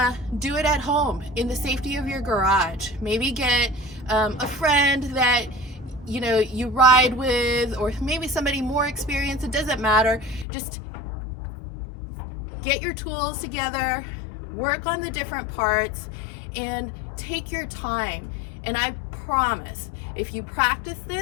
do it at home in the safety of your garage. Maybe get a friend that you ride with, or maybe somebody more experienced. It doesn't matter. Just get your tools together, work on the different parts, and take your time. And I promise, if you practice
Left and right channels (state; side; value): drops out; right; at 10.5 s